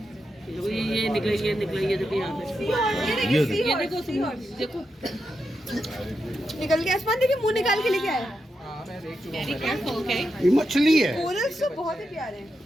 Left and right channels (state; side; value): normal; both; correlation 0.86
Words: ये निकले देखो यहाँ पे। ये देखो देखो निकल गया। आसमान देखिए मुंह निकाल के लेके आया। वेरी केयरफुल ओके ये मछली है। कोरल्स तो बहुत ही प्यारे हैं।